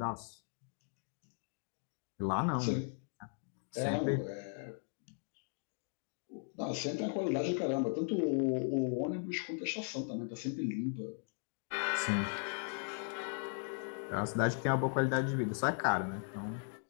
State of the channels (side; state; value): right; silent; 53 dB below the other